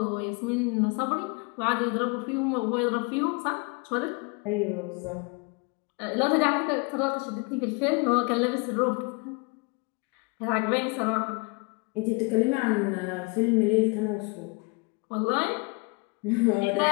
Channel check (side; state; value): right; quieter; 30.9 dB